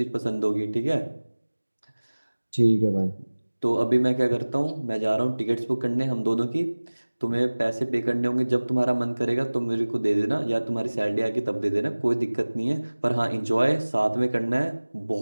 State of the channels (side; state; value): both; inverted; correlation -1.00